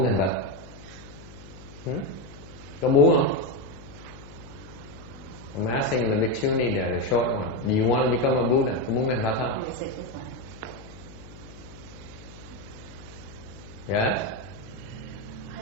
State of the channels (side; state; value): left; noise; hum, 17 dB below the sound